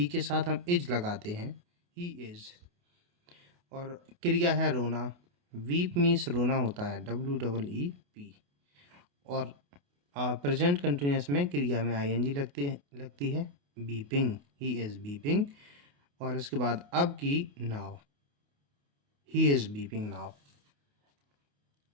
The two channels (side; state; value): left; late; 28 ms